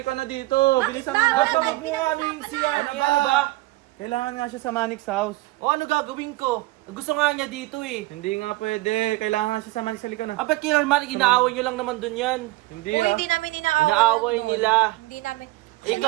na dito. Bilisan mo na. Ba't ba wag mo nga ano yung siya? Ano Ano ba? Kailangan nga siya sa Manix House. O ano gagawin ko? Gusto nga niya dito eh. Hindi nga pwede. Kailangan nga siya sa Manix. Halika na. Ah, ba't kailangan inaaway nyo lang naman dun yan? Hindi Hoy, ah. hindi namin inaaway. Inaaway doon. nila. Hindi namin.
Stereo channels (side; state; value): left; quieter; 19.9 dB